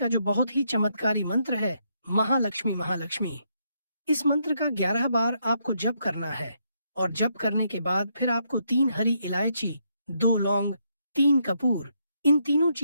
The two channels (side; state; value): both; inverted; correlation -0.76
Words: जो बहुत ही चमत्कारी मंत्र है, महालक्ष्मी महालक्ष्मी, इस मंत्र का 11 बार आपको जप करना है। और जप करने के बाद फिर आपको 3 हरी इलायची, 2 लौंग, 3 कपूर, इन तीनों